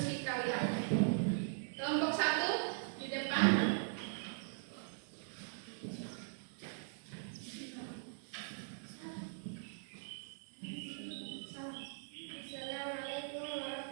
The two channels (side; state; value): left; silent; digital silence